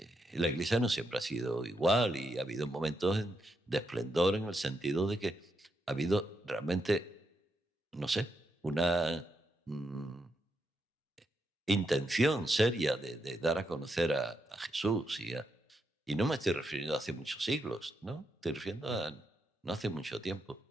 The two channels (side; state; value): both; normal; correlation 0.82